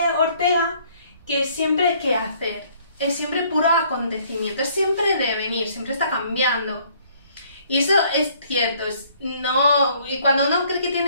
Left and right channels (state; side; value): inverted; both; correlation -0.62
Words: Ortega, que siempre hay que hacer, es siempre puro acontecimiento, es siempre devenir, siempre está cambiando. Y eso es cierto, y cuando uno cree que